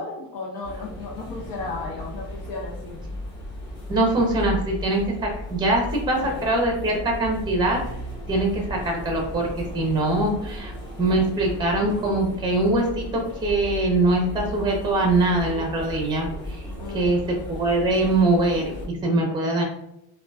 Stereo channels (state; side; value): normal; both; correlation 0.26